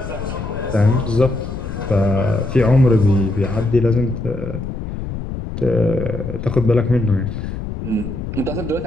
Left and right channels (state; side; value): noise; left; rumble, 7 dB below the sound